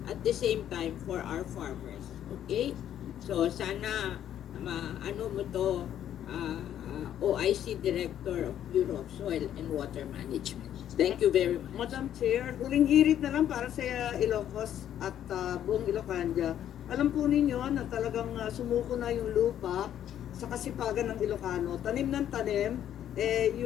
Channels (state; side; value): quieter; right; 10.6 dB